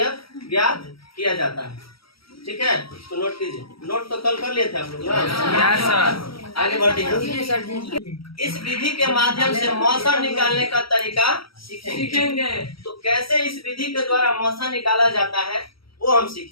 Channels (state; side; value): late; right; 0.75 ms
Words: ज्ञात किया जाता है। ठीक है, तो नोट कीजिए। नोट तो कल कर लिए थे आप लोग ना? आगे बढ़ते हैं। इस विधि के माध्यम से मौसा निकालने का तरीका सीखेंगे। तो कैसे इस विधि के द्वारा मौसा निकाला जाता है वो हम